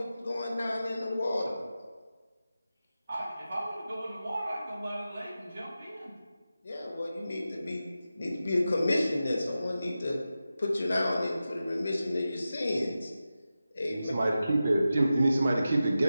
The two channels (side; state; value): both; inverted; correlation -0.93